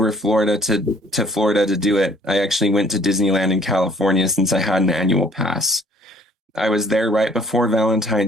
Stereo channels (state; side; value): normal; both; correlation 0.58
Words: Florida to Florida to do it, I actually went to Disneyland in California since I had an annual pass. I was there right before